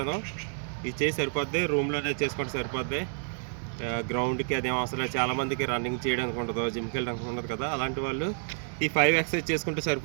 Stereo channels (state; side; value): silent; left; digital silence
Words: ఇది చేసి సరిపోద్ది, రూమ్లోనే చేసుకుంటే సరిపోద్ది. గ్రౌండ్కి అదేం అవసరం లేదు. చాలామందికి రన్నింగ్ చేయడానికి ఉండదు, జిమ్కి వెళ్ళడానికి ఉండదు కదా. అలాంటి వాళ్ళు ఈ 5 ఎక్సర్సైజ్ చేసుకుంటే